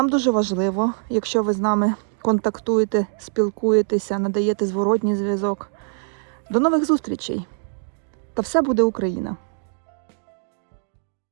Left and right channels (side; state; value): left; silent; 63 dB below the other